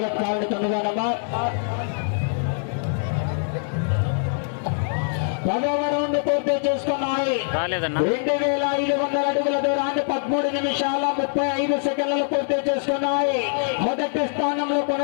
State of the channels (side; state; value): right; silent; 63 dB below the other